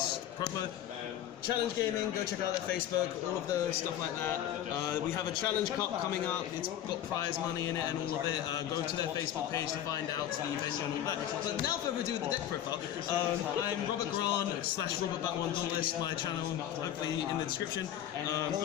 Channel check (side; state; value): right; quieter; 11.2 dB